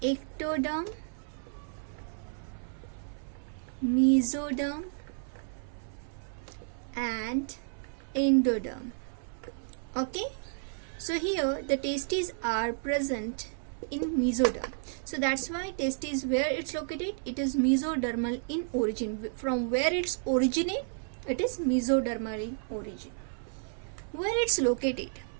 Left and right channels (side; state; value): left; silent; 57 dB below the other